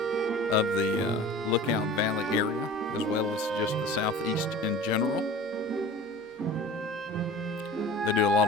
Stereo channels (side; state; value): both; normal; correlation 0.39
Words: of the Lookout Valley area, as well as just the southeast in general. They do a